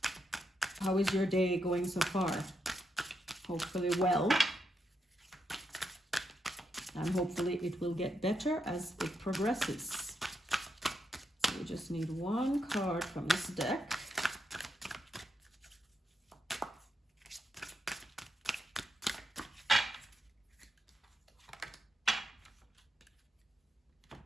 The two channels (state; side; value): normal; both; correlation 0.82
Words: How is your day going so far? Hopefully well. And hopefully it will get better as it progresses. So we just need one card from this deck.